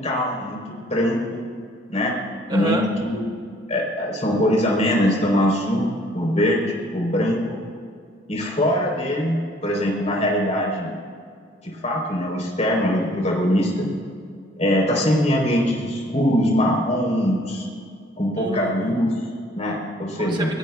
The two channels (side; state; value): both; normal; correlation 0.59